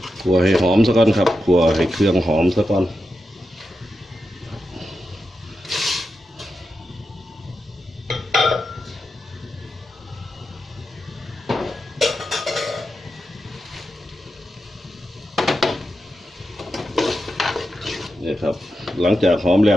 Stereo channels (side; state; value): both; normal; correlation 0.88